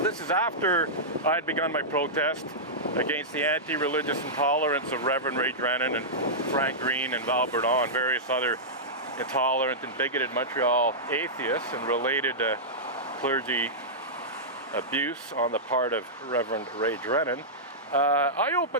this is after I had begun my protest against the anti-religious intolerance of Reverend Ray Drennan and Frank Green and Val Bourdon and various other intolerant and bigoted Montreal atheists and related clergy abuse on the part of Reverend Ray Drennan. I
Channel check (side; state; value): both; normal; correlation -0.12